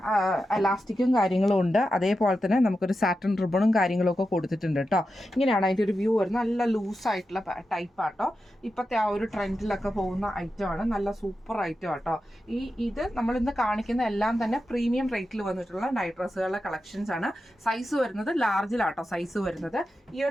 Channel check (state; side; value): normal; both; correlation 0.90